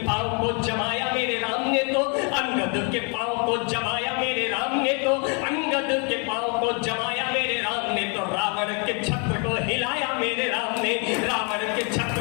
को जमाया मेरे राम ने, तो अंगद के पांव को जमाया मेरे राम ने, तो अंगद के पांव को जमाया मेरे राम ने, तो रावण के छत्र को हिलाया मेरे राम ने, रावण के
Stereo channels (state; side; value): quieter; right; 35.7 dB